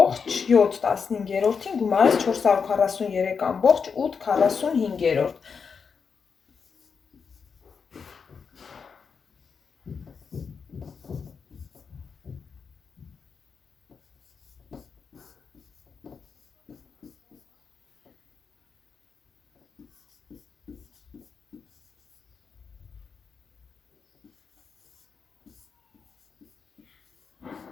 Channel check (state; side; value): quieter; right; 5.9 dB